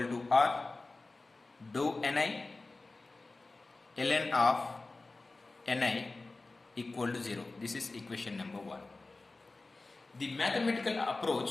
to r, dou ni ln of ni equal to 0. This is equation number 1. The mathematical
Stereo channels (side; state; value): right; quieter; 3.4 dB